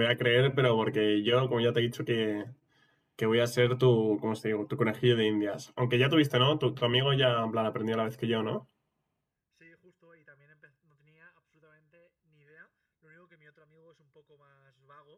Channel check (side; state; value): both; identical; correlation 1.00